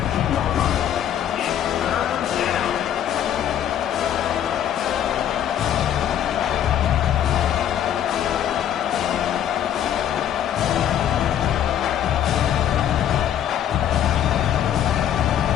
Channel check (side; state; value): right; quieter; 10.2 dB